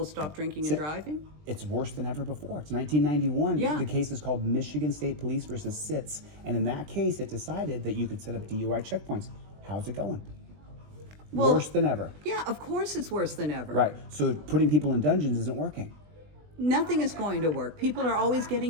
stop drinking and driving? It's worse than ever before. It's 1991. Yeah. The case is called Michigan State Police versus SITS. And in that case, it decided that you could set up DUI checkpoints. How's it going? Well, worse than ever. Yeah, of course it's worse than ever. Right. So putting people in dungeons isn't working. Nothing is going to work. People are always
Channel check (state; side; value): late; left; 20 ms